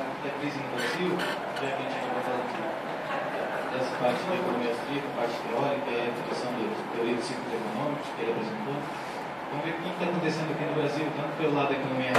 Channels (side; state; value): both; identical; correlation 1.00